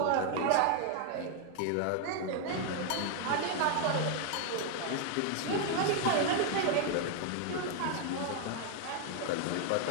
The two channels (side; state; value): both; different; correlation 0.00